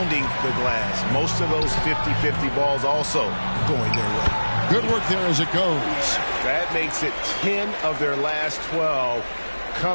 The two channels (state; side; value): inverted; both; correlation -1.00